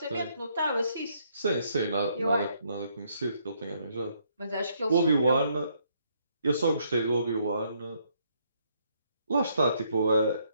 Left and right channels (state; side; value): inverted; both; correlation -0.71